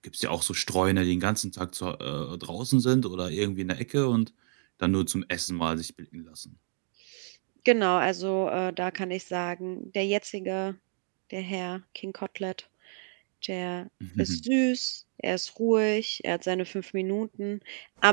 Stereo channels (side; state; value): left; silent; 58 dB below the other